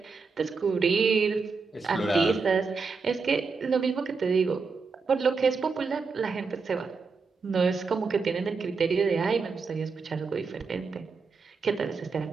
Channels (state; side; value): quieter; left; 4.7 dB